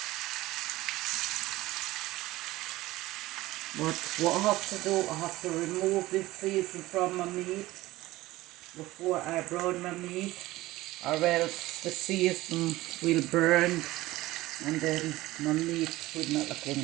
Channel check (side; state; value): left; quieter; 17.9 dB